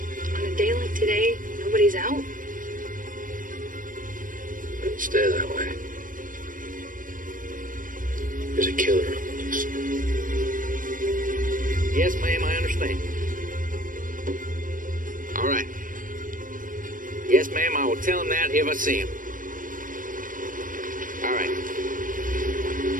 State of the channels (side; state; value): left; late; 0.39 ms